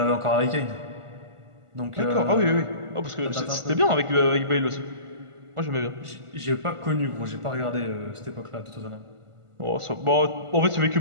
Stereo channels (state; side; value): late; left; 1.5 ms